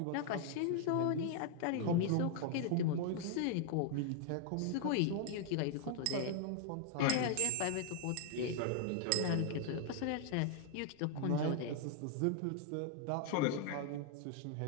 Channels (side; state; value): both; different; correlation 0.00